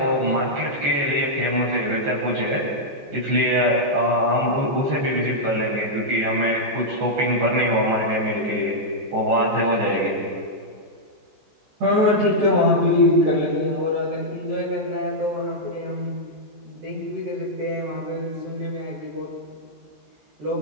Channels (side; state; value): left; late; 14 ms